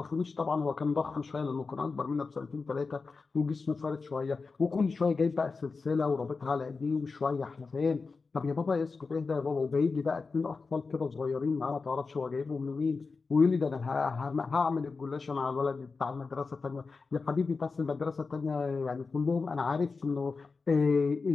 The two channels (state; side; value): quieter; right; 4.4 dB